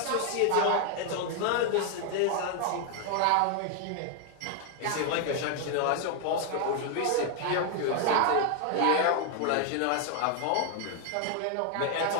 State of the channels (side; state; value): both; different; correlation 0.00